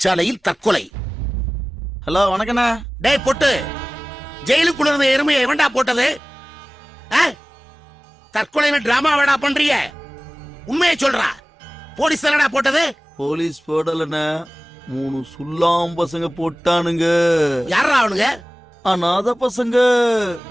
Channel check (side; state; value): both; normal; correlation 0.98